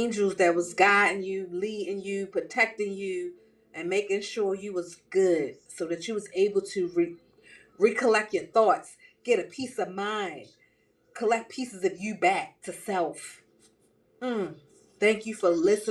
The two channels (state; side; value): identical; both; correlation 1.00